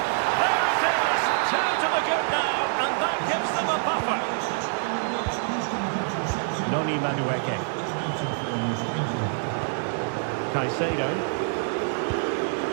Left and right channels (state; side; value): silent; left; digital silence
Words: There it is! 2 to the good now, and that gives them a buffer. Noni Madueke. Caicedo.